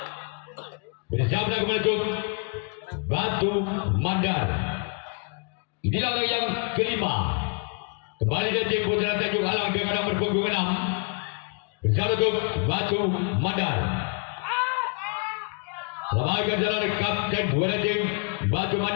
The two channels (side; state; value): right; quieter; 35.0 dB